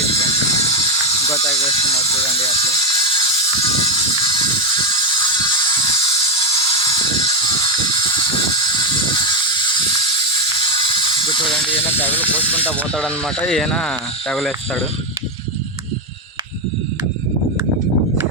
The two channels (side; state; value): both; normal; correlation 0.06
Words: ఫ్రెండ్స్. ఇంకో తగ్గి వేస్తున్నారు చూడండి అట్లే. ఇప్పుడు చూడండి ఈయన తెగలు పోసుకుంటా పోతాడనమాట. ఈయన తెగలేస్తాడు.